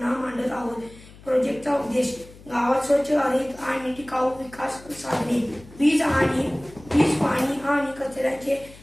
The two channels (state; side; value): noise; left; hum, 21 dB below the sound